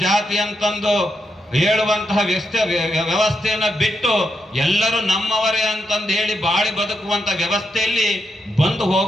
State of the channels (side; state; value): both; normal; correlation 0.83